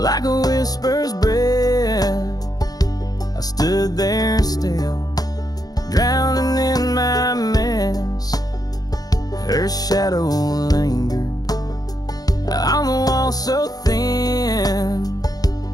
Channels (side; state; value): right; late; 0.19 ms